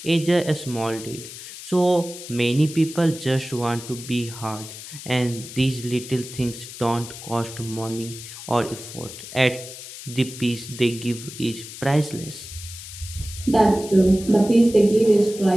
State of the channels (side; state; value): left; noise; hiss, 13 dB below the sound